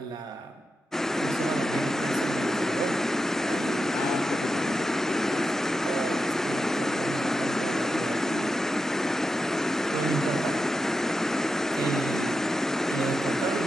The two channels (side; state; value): both; normal; correlation 0.89